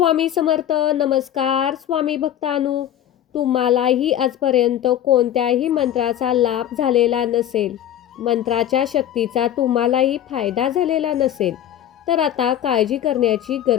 समर्थ. नमस्कार स्वामी भक्तांनो. तुम्हालाही आजपर्यंत कोणत्याही मंत्राचा लाभ झालेला नसेल, मंत्राच्या शक्तीचा तुम्हालाही फायदा झालेला नसेल, तर आता काळजी करण्याची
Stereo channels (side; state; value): right; quieter; 11.2 dB